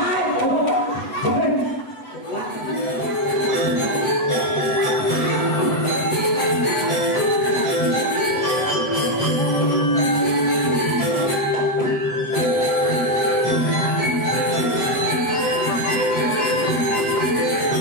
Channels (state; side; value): late; right; 7.9 ms